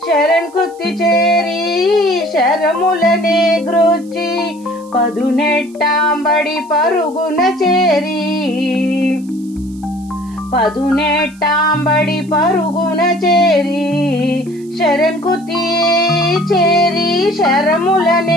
శరణ్కుత్తి చేరి శరములనే గ్రోచి, పదునెట్టాంబడి పరుగున చేరి, పదునెట్టాంబడి పరుగున చేరి, శరణ్కుత్తి చేరి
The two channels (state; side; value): noise; right; hiss, 27 dB below the sound